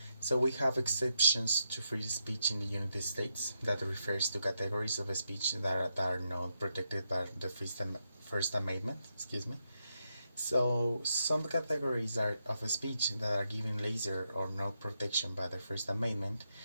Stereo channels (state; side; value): inverted; both; correlation -0.83